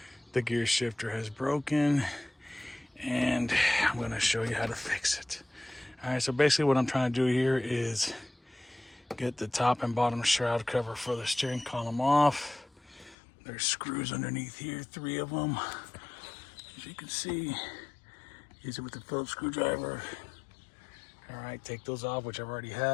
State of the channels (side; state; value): right; drops out; at 13.2 s